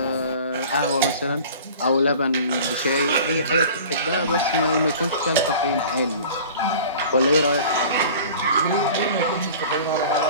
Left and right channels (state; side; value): inverted; both; correlation -0.42